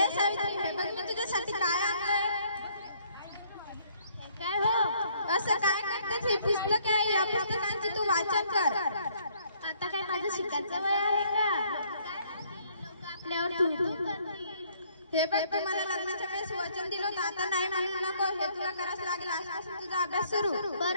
सावित्री हे बघ मी तुझ्यासाठी काय आणलंय. काय हो असं काय करतेस. ही पुस्तक आहे या पुस्तकांची तू वाचन कर. आता काय माझं शिकायचं वय आहे का. आपल्यावर तू हे बघ तू मला लग्नाच्या वेळेस वचन दिलं होतं आता नाही म्हणू नको. हे तुला करावंच लागेल. असं तुझा अभ्यास सुरू.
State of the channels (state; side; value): inverted; both; correlation -0.64